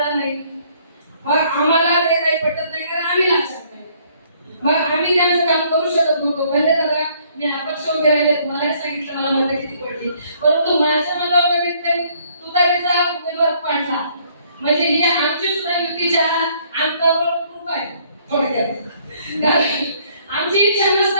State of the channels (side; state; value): both; inverted; correlation -0.64